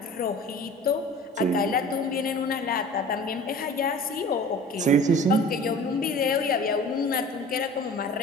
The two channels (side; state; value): both; normal; correlation 0.42